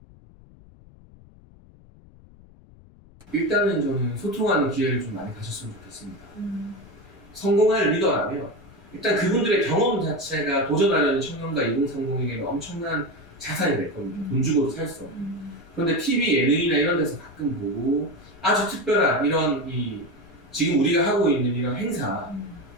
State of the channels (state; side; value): noise; left; rumble, 24 dB below the sound